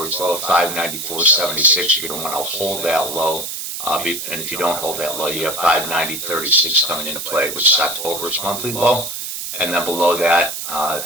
low of 594.76. You're going to want to hold that low. And if you don't hold that low, you have 590.36 coming into play, which is October's monthly low. And then below that,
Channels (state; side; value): noise; right; hiss, 6 dB below the sound